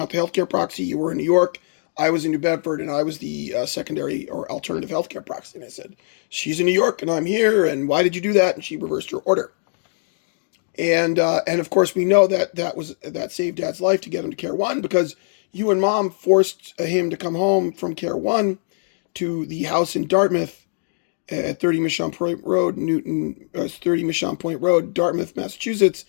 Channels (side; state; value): right; silent; 64 dB below the other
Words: the healthcare proxy. You were in New York. I was in New Bedford, and I was the secondary or alternative healthcare proxy. And I said, she's in New York, and I'm here, and why did you do that? And she reversed her order. And of course, we know that saved Dad's life to get him to Care One because you and Mom forced him to come home from Care One to the house in Dartmouth at 30 Mission Point Road, 30 Mission Point Road, Dartmouth, Massachusetts.